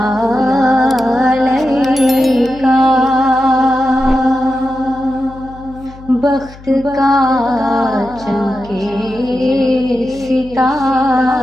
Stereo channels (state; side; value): noise; left; hum, 19 dB below the sound